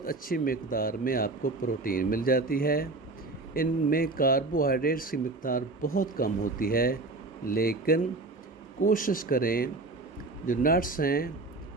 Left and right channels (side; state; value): left; quieter; 3.3 dB